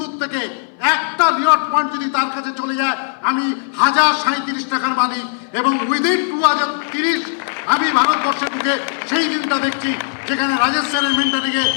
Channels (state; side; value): silent; right; 61 dB below the other